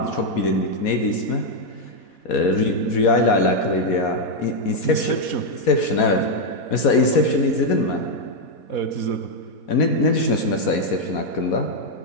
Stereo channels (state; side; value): late; right; 4.2 ms